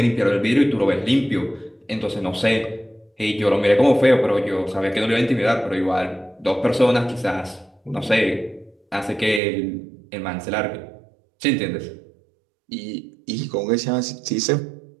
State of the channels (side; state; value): left; drops out; at 9.4 s